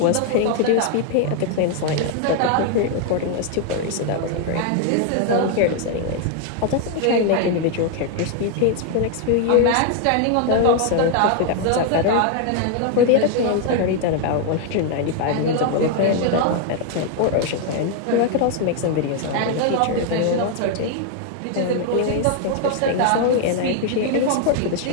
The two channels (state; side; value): different; both; correlation 0.00